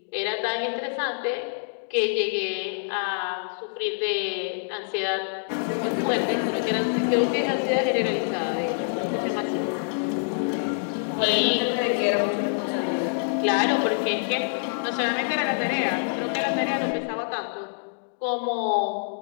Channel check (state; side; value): silent; right; digital silence